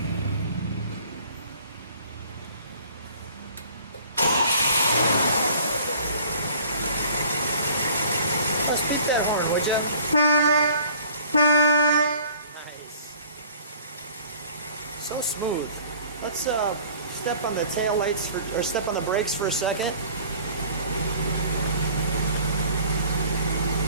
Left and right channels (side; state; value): both; inverted; correlation -0.51